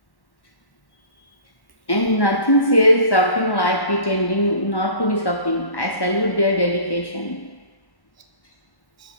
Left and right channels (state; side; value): late; right; 1.1 ms